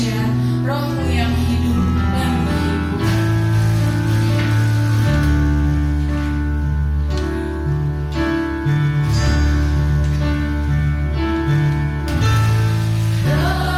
Roh-Mu yang hidup dan menghibur.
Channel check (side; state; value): both; identical; correlation 1.00